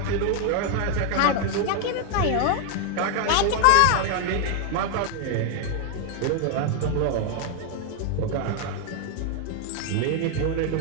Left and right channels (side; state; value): both; different; correlation 0.01